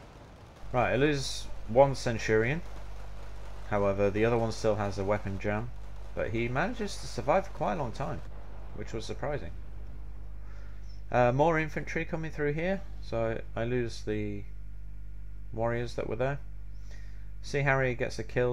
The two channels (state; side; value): identical; both; correlation 1.00